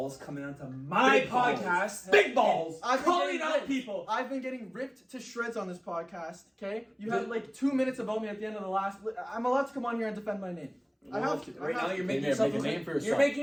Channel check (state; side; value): identical; both; correlation 1.00